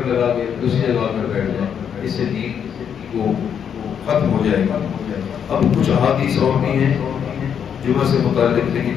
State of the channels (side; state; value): right; quieter; 8.0 dB